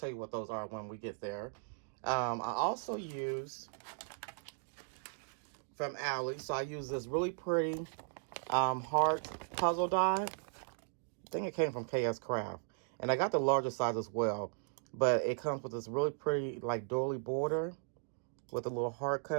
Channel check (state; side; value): silent; left; digital silence